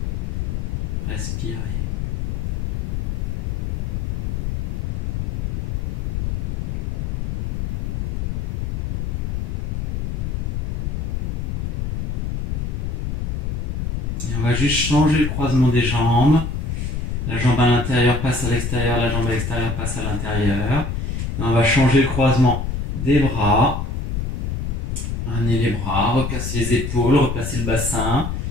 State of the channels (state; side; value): noise; left; rumble, 1 dB below the sound